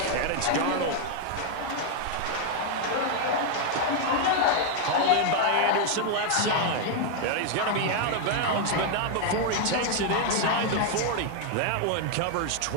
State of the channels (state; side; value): different; both; correlation 0.00